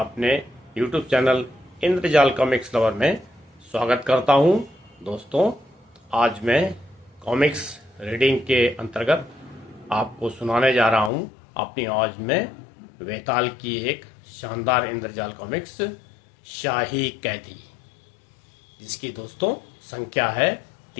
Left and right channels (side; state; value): right; drops out; at 11.1 s